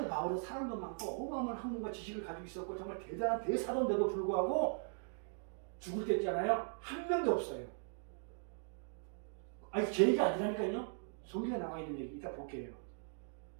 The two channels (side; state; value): left; silent; digital silence